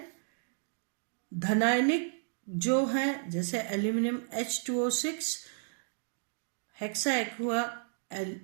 धनायनिक जो है जैसे aluminium H2O6, hexa aqua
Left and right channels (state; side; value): silent; left; digital silence